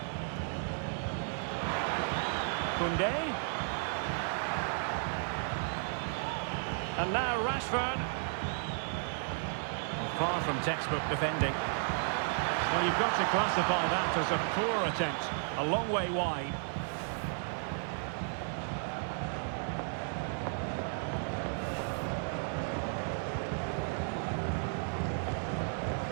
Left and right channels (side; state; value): left; silent; 55 dB below the other